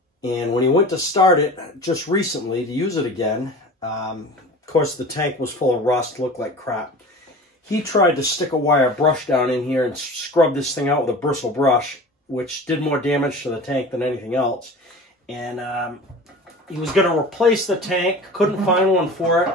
And when he went to start it just recently to use it again, of course the tank was full of rust, looked like crap. He tried to stick a wire brush down in here and scrub this thing out with a bristle brush, which did more damage to the tank than anything else. And he was going to replace the tank, couldn't find one for it,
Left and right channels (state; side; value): normal; both; correlation 0.37